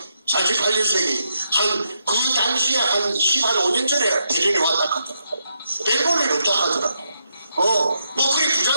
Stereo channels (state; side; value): inverted; both; correlation -0.80